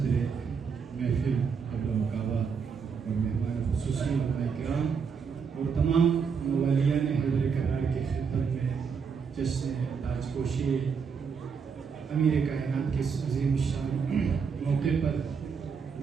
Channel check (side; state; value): left; quieter; 6.0 dB